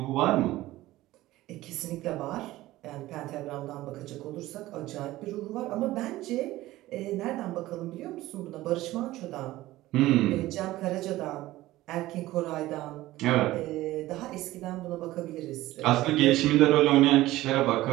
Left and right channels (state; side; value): quieter; left; 16.7 dB